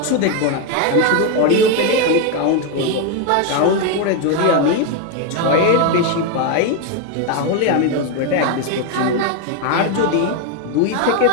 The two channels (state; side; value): different; both; correlation 0.02